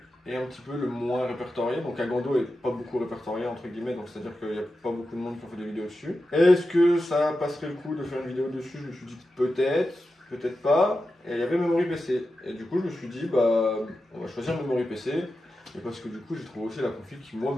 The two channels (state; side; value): normal; both; correlation 0.91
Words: un petit peu le moins répertorié? Donc Agando est pas beaucoup répertorié, entre guillemets, donc c'est-à-dire qu'il n'y a pas beaucoup de monde qui ont fait des vidéos dessus. Est-ce que ça passerait le coup de faire une vidéo dessus? Je me suis dit peut-être, peut-être pas. Et il y avait Memory PC. Et du coup, je me suis dit, on va choisir Memory PC. Et parce que du coup, j'ai trouvé aussi la config qui, moi,